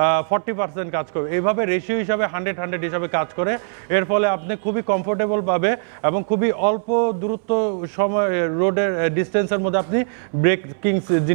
40% কাজ করবে। এইভাবে রেশিও হিসাবে 100 হিসাবে কাজ করে। এর ফলে আপনি খুবই কমফোর্টেবল পাবে এবং খুবই অল্প দূরত্ব সময় রোডের ডিস্টেন্সের মধ্যে আপনি ব্রেকিং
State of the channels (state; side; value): silent; left; 63 dB below the other